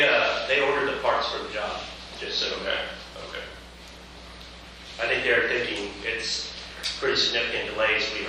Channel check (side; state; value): both; identical; correlation 1.00